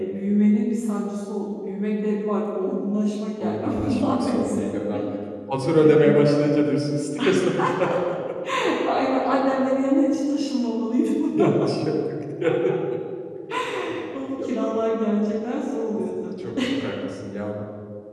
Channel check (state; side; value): identical; both; correlation 1.00